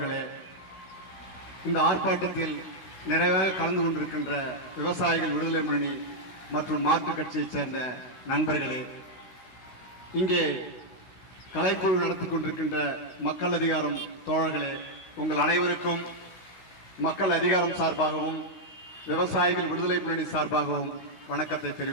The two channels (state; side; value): late; right; 16 ms